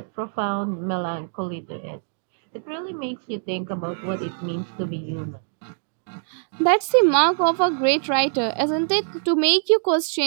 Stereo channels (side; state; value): left; silent; digital silence